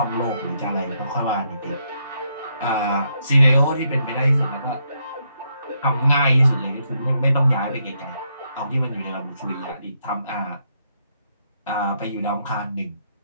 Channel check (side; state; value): both; inverted; correlation -0.77